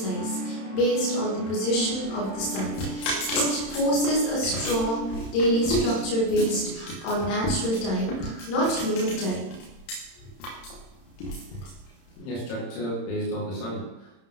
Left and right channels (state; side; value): late; right; 31 ms